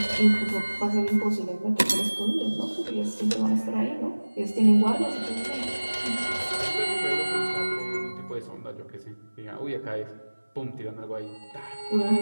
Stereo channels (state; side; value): inverted; both; correlation -1.00